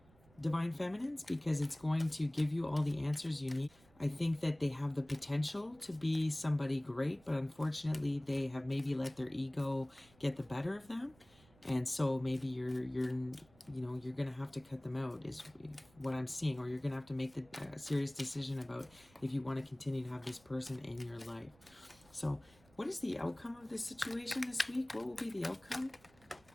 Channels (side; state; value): right; noise; rumble, 28 dB below the sound